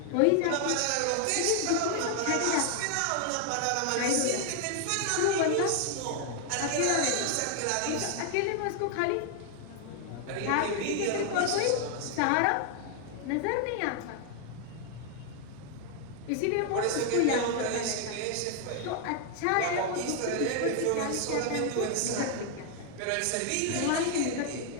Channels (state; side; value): different; both; correlation 0.00